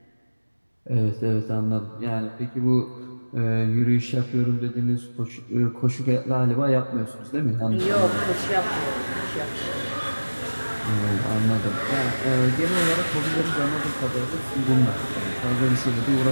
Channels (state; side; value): inverted; both; correlation -1.00